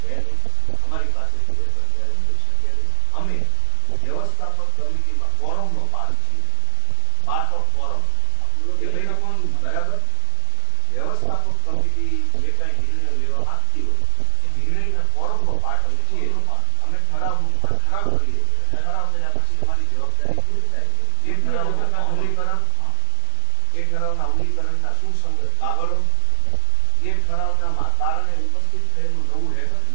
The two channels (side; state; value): both; different; correlation 0.00